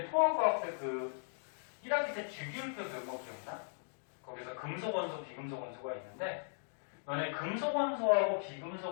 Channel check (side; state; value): right; silent; digital silence